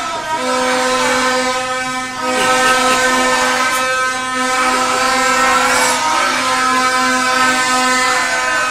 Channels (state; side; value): noise; left; rumble, 27 dB below the sound